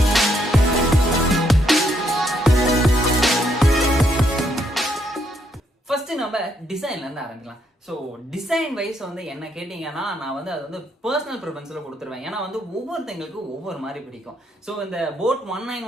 ஃபர்ஸ்ட் நம்ம டிசைன்ல இருந்து ஆரம்பிக்கலாம். ஸோ டிசைன் வைஸ் வந்து என்ன கேட்டீங்கன்னா, நான் வந்து அது வந்து பர்சனல் ப்ரிஃபரன்ஸ்ல கொடுத்துருவேன். ஏன்னா வந்து ஒவ்வொருத்தங்களுக்கு ஒவ்வொரு மாதிரி பிடிக்கும். ஸோ இந்த போட்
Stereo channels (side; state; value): both; normal; correlation 0.74